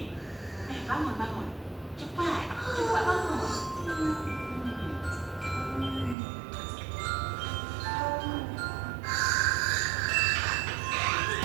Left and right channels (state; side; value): drops out; left; at 6.2 s